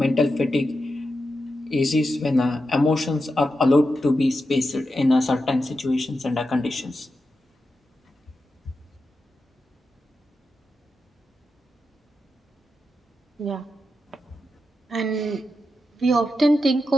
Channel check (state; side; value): normal; both; correlation 0.88